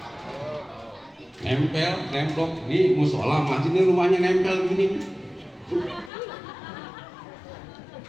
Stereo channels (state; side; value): drops out; right; at 6.1 s